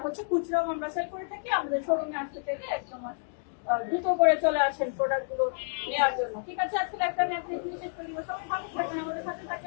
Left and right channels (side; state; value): right; silent; digital silence